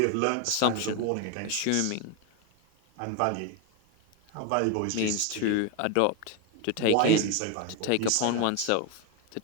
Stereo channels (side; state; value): both; different; correlation 0.01